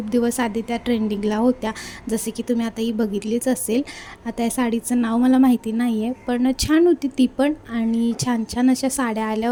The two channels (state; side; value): identical; both; correlation 1.00